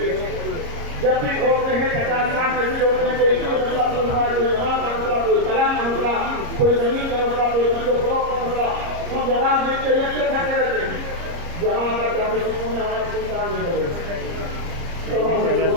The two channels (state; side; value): late; left; 30 ms